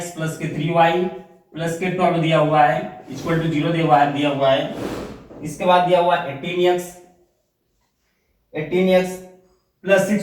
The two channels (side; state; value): both; identical; correlation 1.00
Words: + 3y + 12 दिया हुआ है इक्वल टू 0 दिया हुआ है। इसके बाद दिया हुआ है 18x +